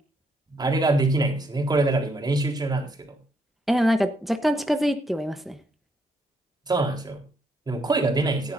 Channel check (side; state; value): both; normal; correlation 0.74